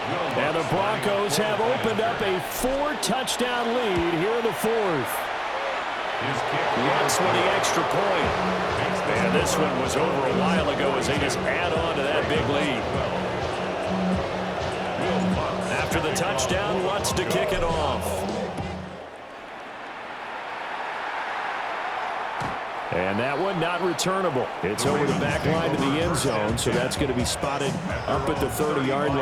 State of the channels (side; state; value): both; identical; correlation 1.00